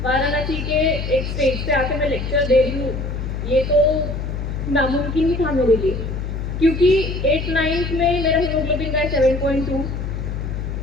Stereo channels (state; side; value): noise; left; hum, 4 dB below the sound